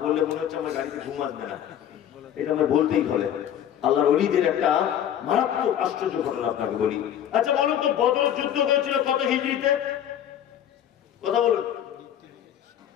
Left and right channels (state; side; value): quieter; right; 10.2 dB